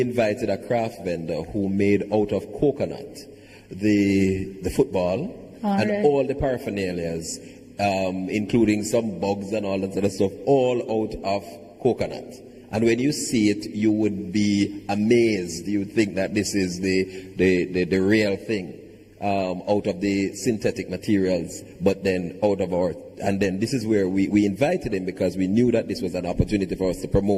invited a craft vendor who made out of coconut the football and all the paraphernalias, including some bugs and all that sort of stuff, all out of coconut. And when you see it, you would be amazed. You would think that this is the real thing, out of the synthetic materials, but then out of our. And then this is where we invited him, because we knew that this was an opportunity for us to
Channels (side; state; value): both; identical; correlation 1.00